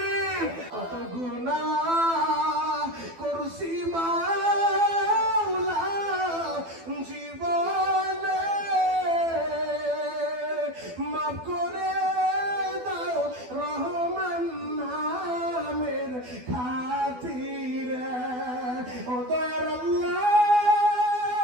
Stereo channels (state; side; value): late; left; 12 ms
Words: কত গুনাহ করছি মাওলা জীবনে, মাফ করে দাও রহমান নামের খাতিরে। ও দয়ার আল্লাহ,